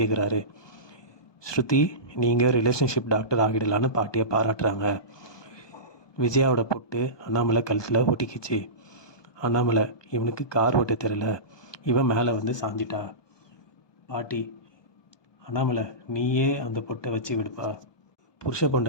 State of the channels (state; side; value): late; right; 1.2 ms